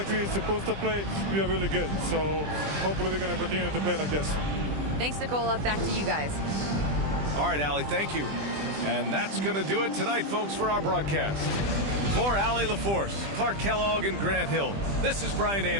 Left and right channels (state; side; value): late; left; 20 ms